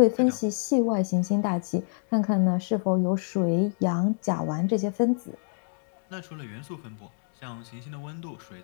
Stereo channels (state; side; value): silent; right; 60 dB below the other